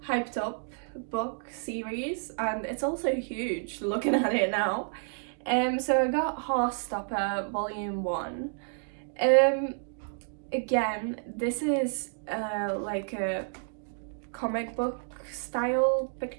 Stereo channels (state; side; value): silent; left; digital silence